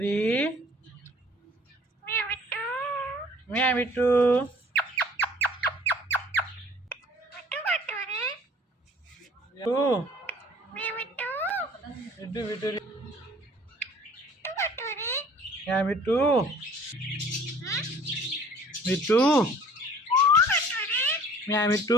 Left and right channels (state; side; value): normal; both; correlation 0.52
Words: म्या मिठू तू मिठू बिटुरी म्या मिठू मिठू म्या